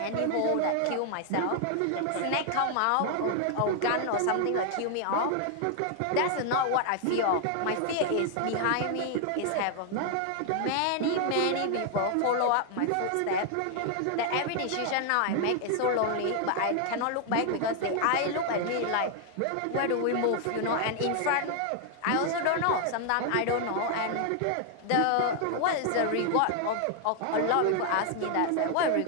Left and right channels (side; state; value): both; different; correlation 0.00